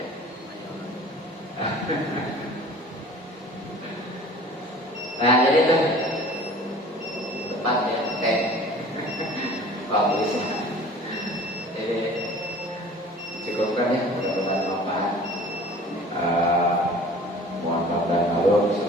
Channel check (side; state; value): both; normal; correlation 0.46